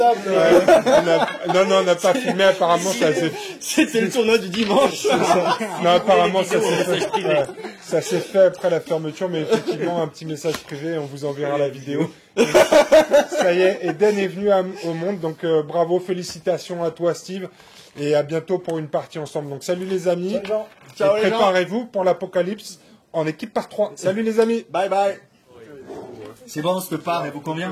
Non, on n'a pas filmé. Apparemment, ça s'est C'était le tournoi du dimanche. Non, apparemment, ça vidéos, s'est message privé. fait, ça s'est fait après la fermeture, mais effectivement, un petit message privé, on vous enverra la vidéo. Ça y est, Eden est venu au monde, donc bravo, félicitations à toi, Steve, et à bientôt pour une partie ensemble. Donc salut les amis, Ciao, et les gens. préparez-vous pour l'apocalypse en équipe par 3. Salut les amis. Bye bye. C'est bon, cette part, elle vous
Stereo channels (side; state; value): both; identical; correlation 1.00